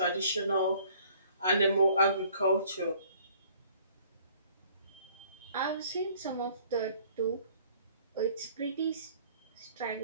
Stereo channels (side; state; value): both; inverted; correlation -0.56